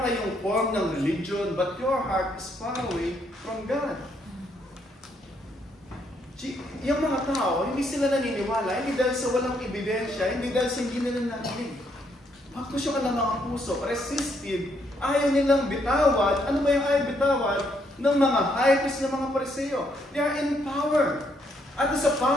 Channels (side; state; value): both; normal; correlation 0.73